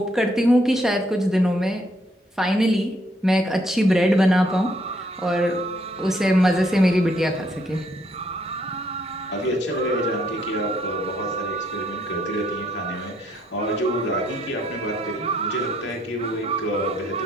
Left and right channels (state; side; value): normal; both; correlation 0.70